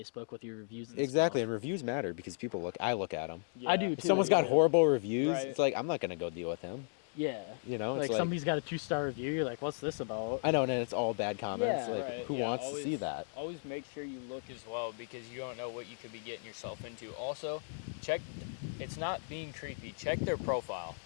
with your reviews. And Exactly, stuff. and reviews matter because people I look at them. Yeah. I do If too. someone's got yeah. horrible reviews, Right. it's like I'm not gonna go deal with him. Yeah. You know, Like it's somebody's got a 2-star review. You're like, what's this about? I know, and it's all bad comments. Yeah. Like, Right, who yeah, wants to see that? Always make sure you look as well because you don't know what you could be getting yourself into. Also, check. It's not being creepy. Check their profile.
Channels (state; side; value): silent; right; digital silence